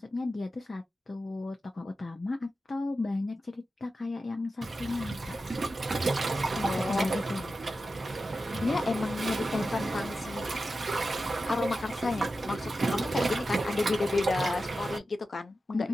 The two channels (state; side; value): normal; both; correlation 0.91